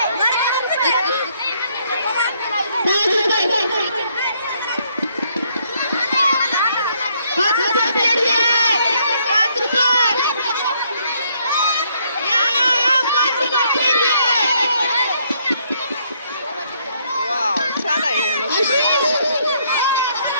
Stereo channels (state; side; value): inverted; both; correlation -0.70